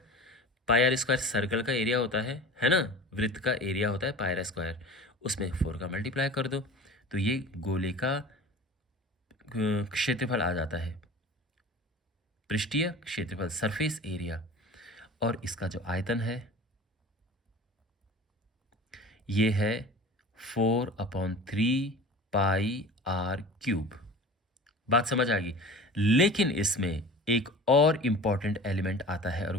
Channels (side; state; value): both; normal; correlation 0.38